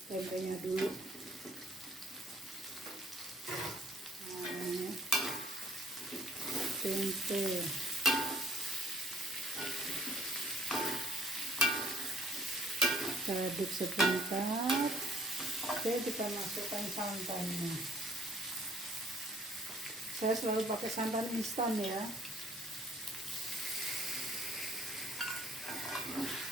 Tempenya dulu. Nah, ini. Tempe. Kita aduk sebentar. Oke, kita masukkan santannya. Saya selalu pakai santan instan ya.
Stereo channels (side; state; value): both; normal; correlation 0.58